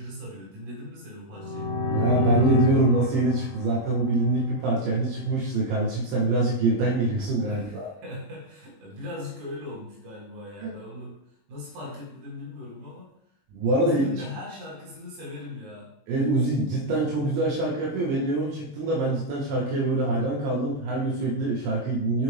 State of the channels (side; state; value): left; late; 21 ms